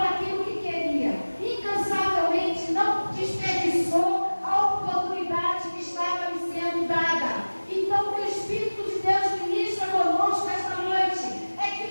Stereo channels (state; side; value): inverted; both; correlation -1.00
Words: que queria, incansavelmente não desperdiçou a oportunidade que estava lhe sendo dada. Então, que o Espírito de Deus ministra conosco esta noite é que